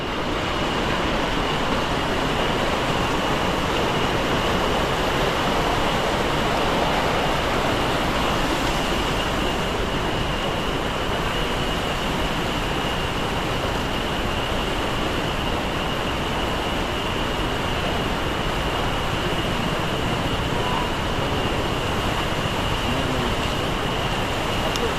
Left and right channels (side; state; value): both; identical; correlation 1.00